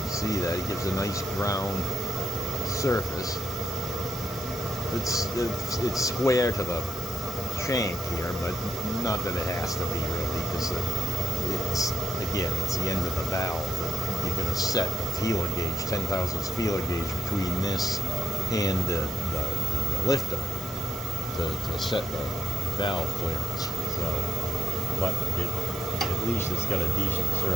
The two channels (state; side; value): normal; both; correlation 0.79